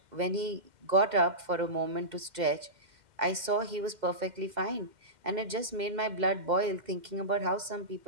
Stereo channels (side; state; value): left; late; 2.1 ms